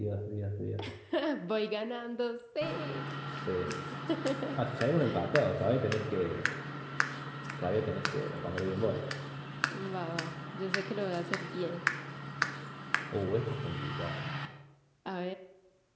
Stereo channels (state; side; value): identical; both; correlation 1.00